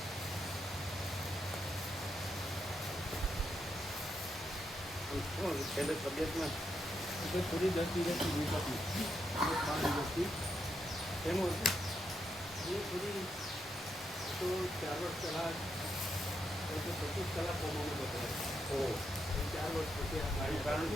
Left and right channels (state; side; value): normal; both; correlation 0.81